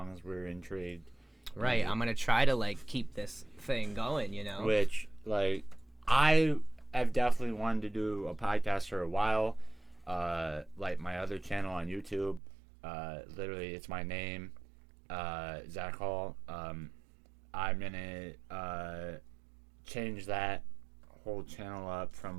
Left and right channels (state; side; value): drops out; left; at 12.4 s